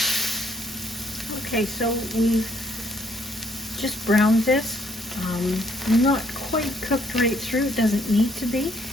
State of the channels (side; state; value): both; normal; correlation 0.67